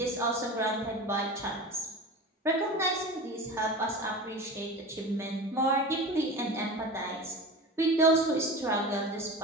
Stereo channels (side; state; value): both; normal; correlation 0.31